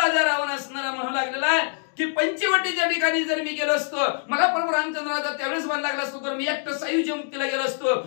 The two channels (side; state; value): right; silent; 62 dB below the other